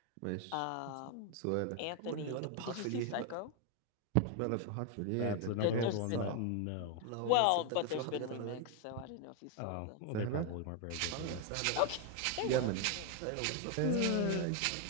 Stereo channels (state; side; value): different; both; correlation 0.01